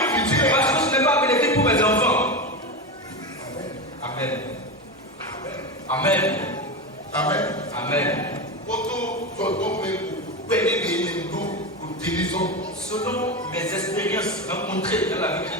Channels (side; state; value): both; normal; correlation 0.18